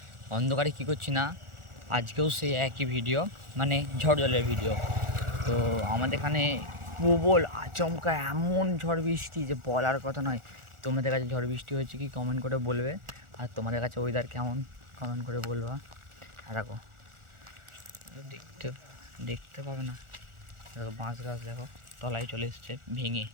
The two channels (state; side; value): late; left; 1.4 ms